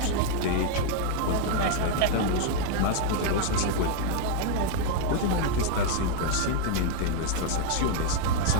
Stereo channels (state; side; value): different; both; correlation 0.01